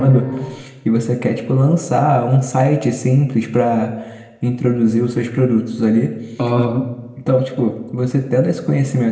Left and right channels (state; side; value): identical; both; correlation 1.00